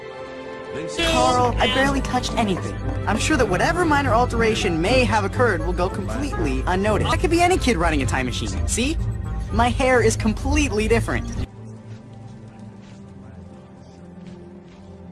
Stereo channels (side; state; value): both; identical; correlation 1.00